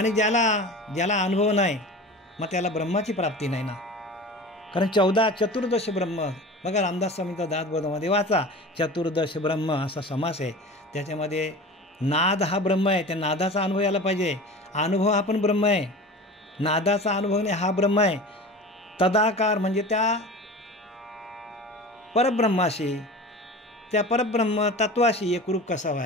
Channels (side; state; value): both; normal; correlation 0.35